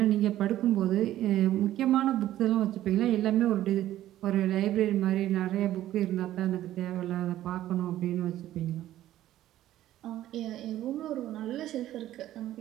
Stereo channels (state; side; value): quieter; left; 13.5 dB